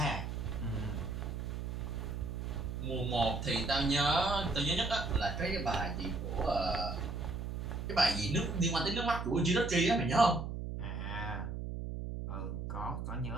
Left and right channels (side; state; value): right; noise; hum, 5 dB below the sound